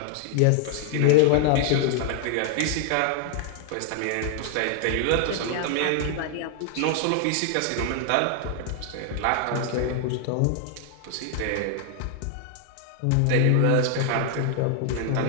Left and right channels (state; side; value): different; both; correlation 0.00